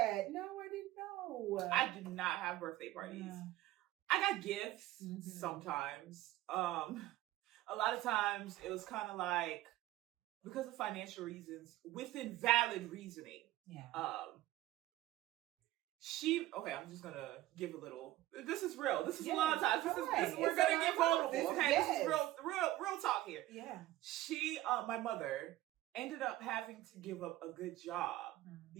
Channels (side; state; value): left; quieter; 15.8 dB